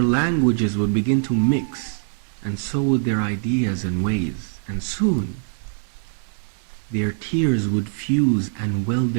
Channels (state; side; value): silent; left; digital silence